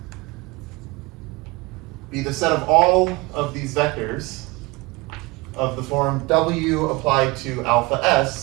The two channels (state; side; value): quieter; left; 24.2 dB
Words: be the set of all of these vectors of the form w applied to alpha